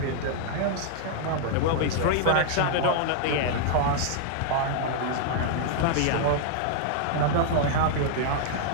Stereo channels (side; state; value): both; different; correlation -0.01